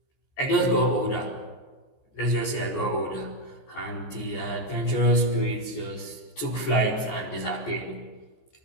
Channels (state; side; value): late; right; 14 ms